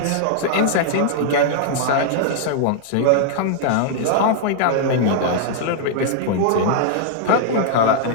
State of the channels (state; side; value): different; both; correlation -0.01